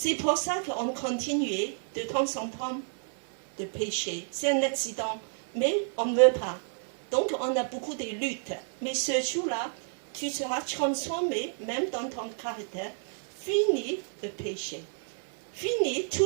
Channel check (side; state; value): left; silent; digital silence